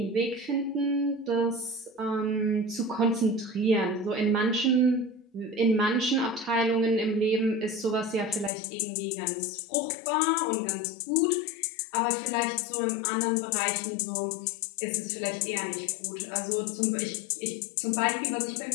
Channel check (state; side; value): drops out; right; at 8.5 s